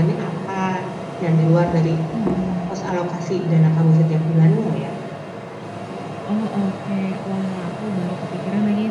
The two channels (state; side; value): identical; both; correlation 1.00